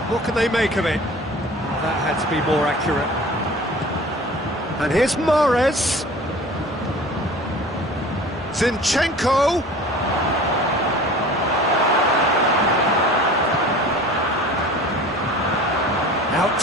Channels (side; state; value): both; normal; correlation 0.42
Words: What can they make of it? That had to be more accurate. And here's Mahrez. Zinchenko. Out